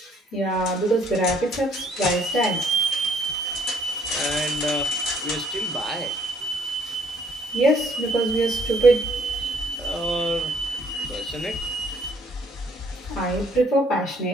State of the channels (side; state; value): both; normal; correlation 0.64